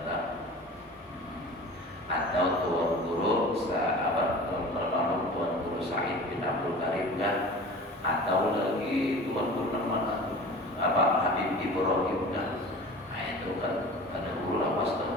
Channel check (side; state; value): both; normal; correlation 0.39